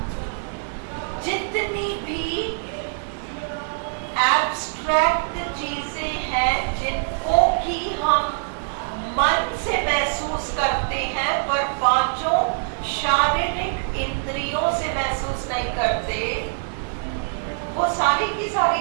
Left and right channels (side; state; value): left; silent; digital silence